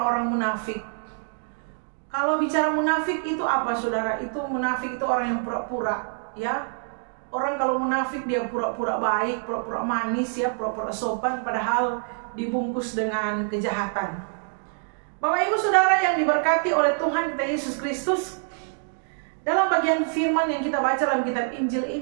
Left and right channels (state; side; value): silent; left; 61 dB below the other